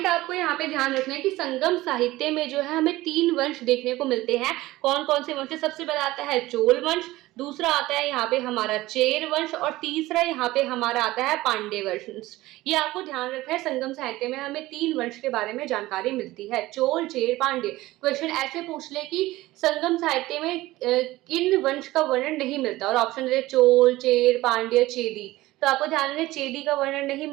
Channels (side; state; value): left; quieter; 17.9 dB